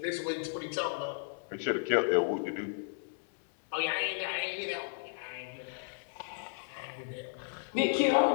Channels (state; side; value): silent; right; 55 dB below the other